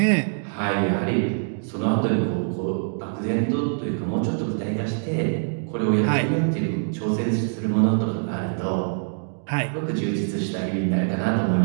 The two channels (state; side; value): silent; left; 62 dB below the other